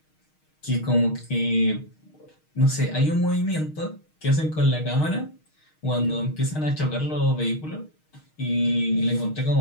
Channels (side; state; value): right; late; 6.4 ms